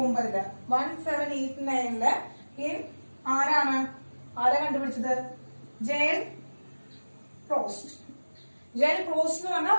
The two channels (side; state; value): both; inverted; correlation -1.00